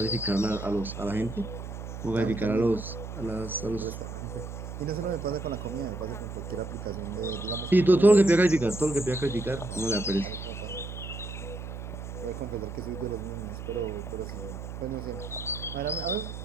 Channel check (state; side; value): noise; right; hum, 8 dB below the sound